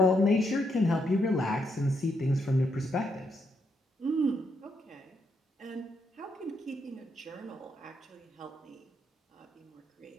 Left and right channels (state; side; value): normal; both; correlation 0.78